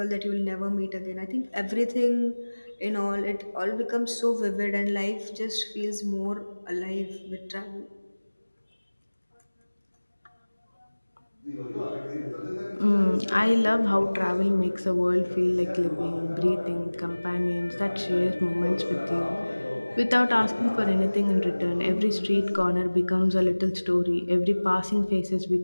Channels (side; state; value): both; inverted; correlation -1.00